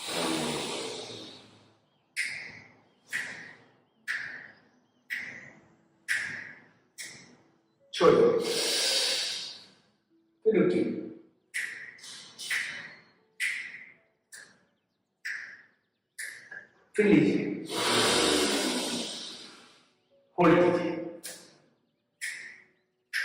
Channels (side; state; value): both; identical; correlation 1.00